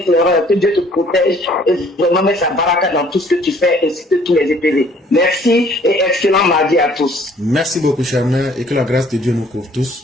que Dieu te protège et vraiment met sa baraka dans tout ce que tu fais, ainsi que tous les EPV. Merci et excellent mardi à tous. Merci beaucoup, chère mère, et que la grâce de Dieu nous couvre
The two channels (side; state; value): both; normal; correlation 0.58